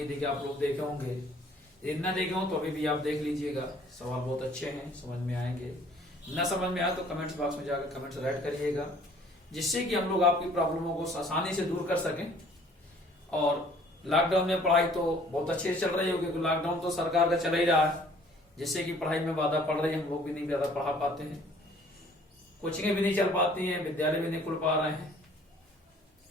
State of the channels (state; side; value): normal; both; correlation 0.56